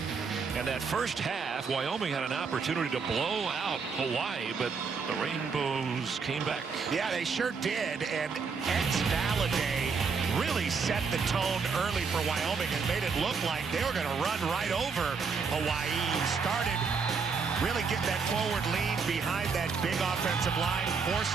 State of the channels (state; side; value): quieter; left; 5.3 dB